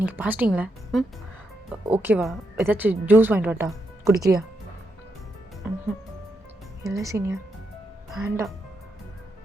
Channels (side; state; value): both; normal; correlation 0.82